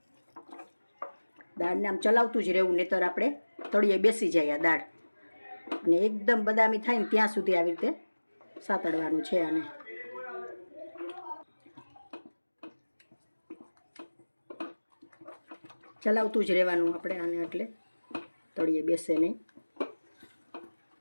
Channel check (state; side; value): inverted; both; correlation -1.00